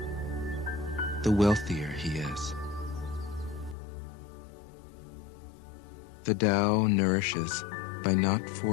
the wealthier he is. The Tao nourishes by not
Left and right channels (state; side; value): drops out; right; at 3.8 s